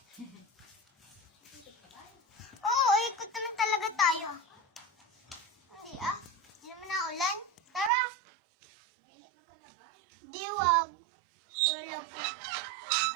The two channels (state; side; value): drops out; left; at 7.9 s